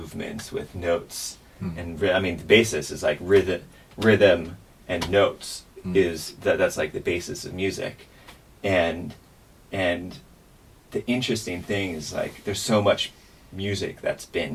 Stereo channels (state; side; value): identical; both; correlation 1.00